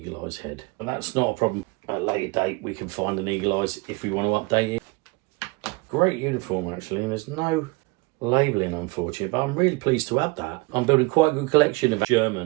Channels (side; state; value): left; quieter; 25.1 dB